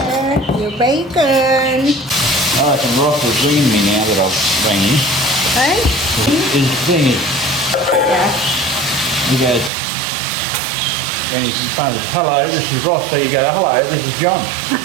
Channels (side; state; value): left; drops out; at 9.7 s